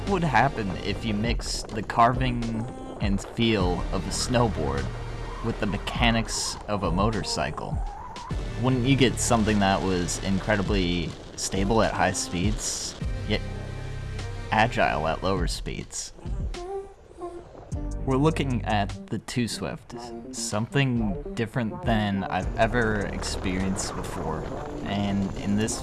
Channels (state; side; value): identical; both; correlation 1.00